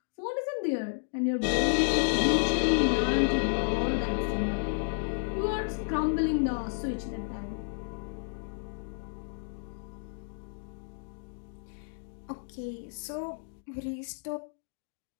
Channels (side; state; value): right; silent; digital silence